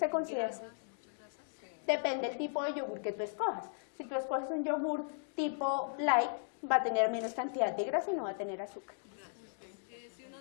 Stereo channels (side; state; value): right; silent; digital silence